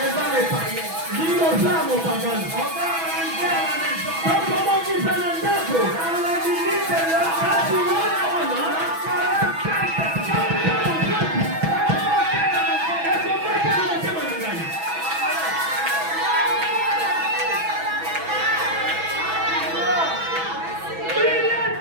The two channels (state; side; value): late; left; 6.1 ms